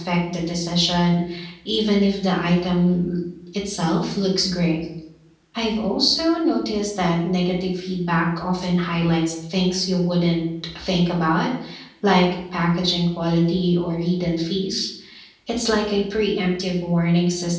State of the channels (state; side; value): identical; both; correlation 1.00